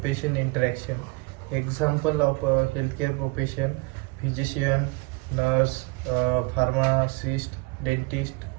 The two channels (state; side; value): quieter; left; 25.6 dB